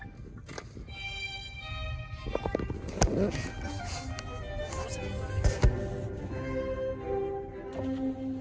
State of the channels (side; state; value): both; identical; correlation 1.00